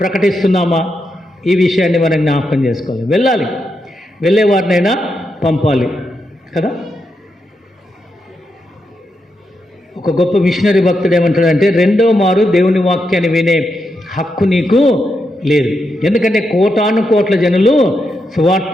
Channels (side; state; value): both; normal; correlation 0.84